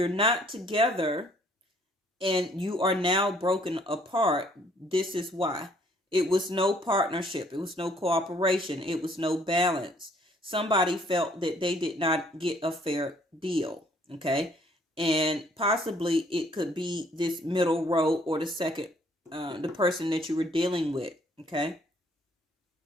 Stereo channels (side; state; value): both; normal; correlation 0.62